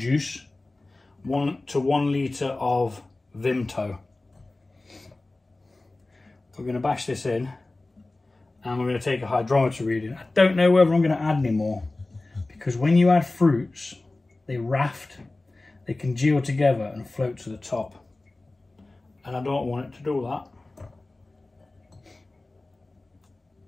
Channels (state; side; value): quieter; right; 3.0 dB